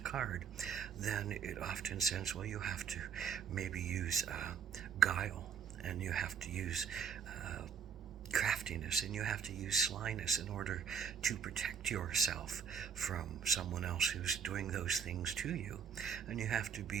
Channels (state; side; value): quieter; left; 7.2 dB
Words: then it often says, well, you have to maybe use guile, and you have to use craftiness, and you have to use slyness in order to protect yourself from someone else who's doing those things to you. And you have to